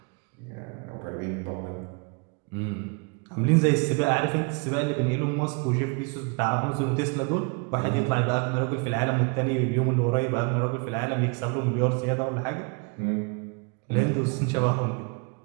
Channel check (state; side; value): quieter; left; 33.3 dB